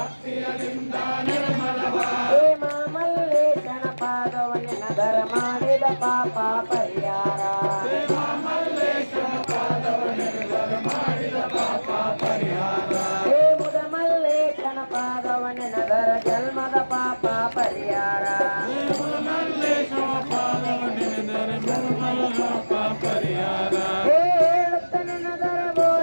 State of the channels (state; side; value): inverted; both; correlation -1.00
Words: ಮಾಡಿದ ಪಾಪ ಪರಿಹಾರ ಹೇ ಮುದ ಮಲ್ಲೇಶನ ಪಾದವನೆನದರ ಜನ್ಮದ ಪಾಪ ಪರಿಹಾರ ಹೇ ಹೇಳುತ್ತನೆನದರ